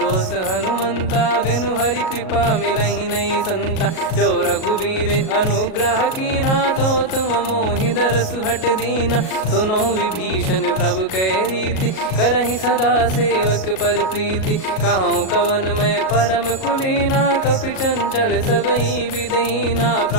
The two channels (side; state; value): right; late; 37 ms